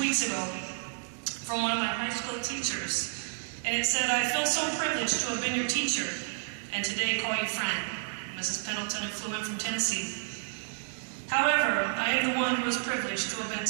ago from one of my high school teachers, and it said, "I feel so privileged to have been your teacher, and today call you friend." Mrs. Pendleton had flew in from Tennessee. However, I am the one who is privileged to have been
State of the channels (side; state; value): left; silent; digital silence